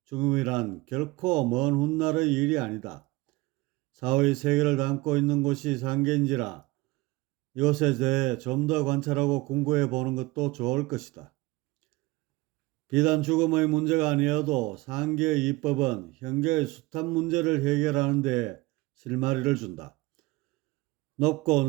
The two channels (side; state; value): left; quieter; 21.1 dB